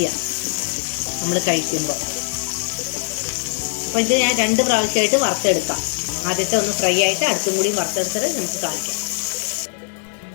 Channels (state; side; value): silent; right; digital silence